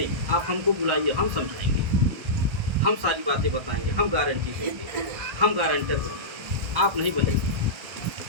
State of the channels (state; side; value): late; left; 1.3 ms